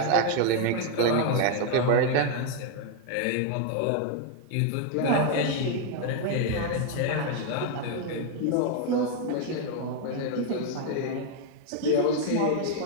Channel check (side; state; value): both; different; correlation 0.00